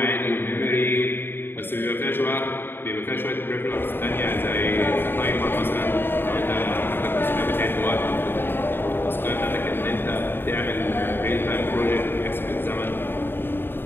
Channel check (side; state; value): right; late; 0.10 ms